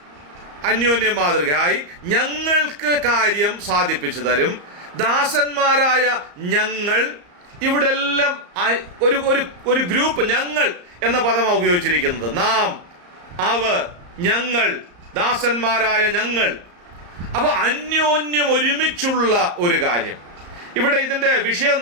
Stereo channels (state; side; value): late; left; 34 ms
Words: അന്യോന്യം മാതൃകയായി ഞങ്ങൾക്ക് കാര്യം സാധിപ്പിച്ചു തരും. ദാസന്മാരായ ഞങ്ങൾ, ഇവിടെ എല്ലാം ഒരു ഗ്രൂപ്പ്, ഞങ്ങൾ എന്ന പദമാണ് ഉപയോഗിച്ചിരിക്കുന്നത്. നാം, അവർ, ഞങ്ങൾ, ദാസന്മാരായ ഞങ്ങൾ. അപ്പൊ അന്യോന്യം ഒരുമിച്ചുള്ള ഒരു കാര്യം. ഇവിടെ ഇതിൻ്റെ വിഷയം